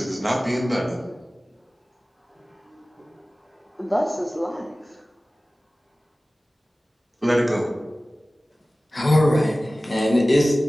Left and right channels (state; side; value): normal; both; correlation 0.97